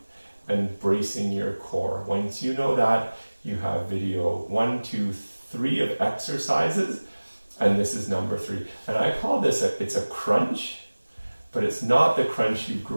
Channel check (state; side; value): inverted; both; correlation -1.00